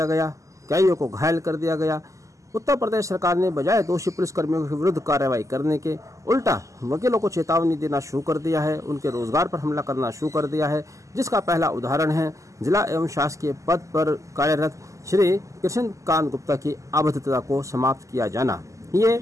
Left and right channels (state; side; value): late; left; 0.16 ms